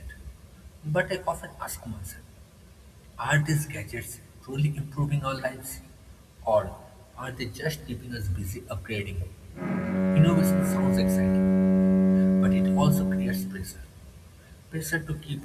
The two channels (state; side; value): identical; both; correlation 1.00